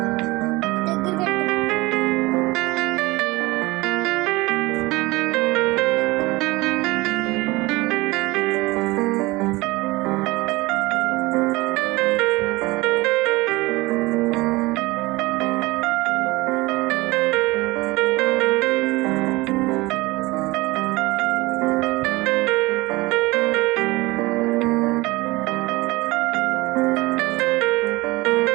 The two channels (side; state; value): left; quieter; 21.6 dB